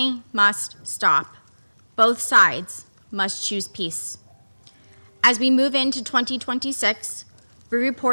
must stop. Both sides must choose peace. As we move into 2026, we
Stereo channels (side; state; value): both; inverted; correlation -1.00